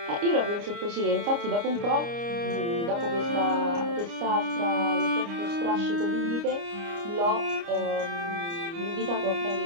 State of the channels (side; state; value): left; late; 29 ms